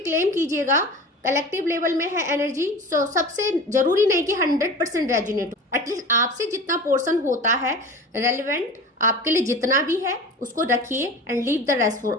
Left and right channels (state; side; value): normal; both; correlation 0.35